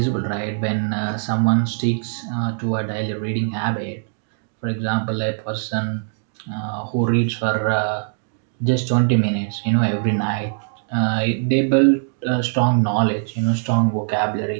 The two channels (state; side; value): silent; left; digital silence